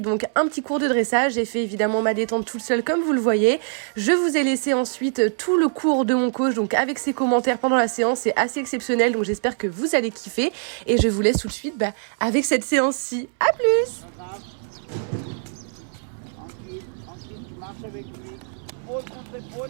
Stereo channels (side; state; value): left; silent; 63 dB below the other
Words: donc un petit cours de dressage. J'ai fait évidemment ma détente toute seule comme vous le voyez. Je vous ai laissé ensuite tout le cours de mon coach, donc avec ses commentaires pendant la séance. C'est assez exceptionnel, donc j'espère que vous allez kiffer. Et je vous laisse tout de suite avec cette séance-ci. À plus! Tranquille, tu marches avec lui. Épaule contre